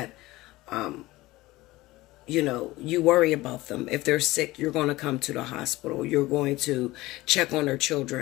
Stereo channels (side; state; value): right; quieter; 18.9 dB